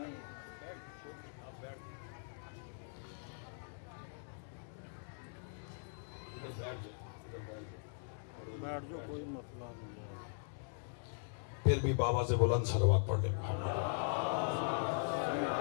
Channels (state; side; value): silent; right; digital silence